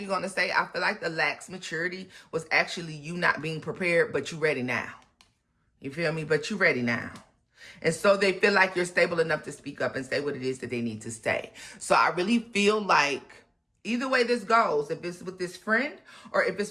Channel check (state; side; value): identical; both; correlation 1.00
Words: going to say I feel like the lax maturity was actually you not being prepared, but you ready now. You feel me? But you ready now. And so they feel like you're stable enough to speak up and say what it is that they need to say. So I really feel like either way this goes, if it's with this friend or if